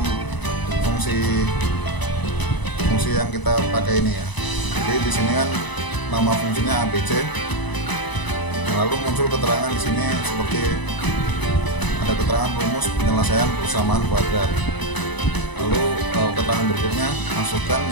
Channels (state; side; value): late; right; 1.0 ms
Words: fungsi yang kita pakai ini ya. Jadi di sini kan nama fungsinya ABC. Lalu muncul keterangan di sini seperti ada keterangan rumus penyelesaian persamaan kuadrat. Lalu keterangan berikutnya masukkan